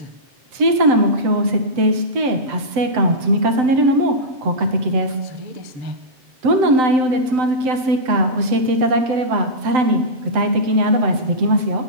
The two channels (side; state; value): left; late; 7.8 ms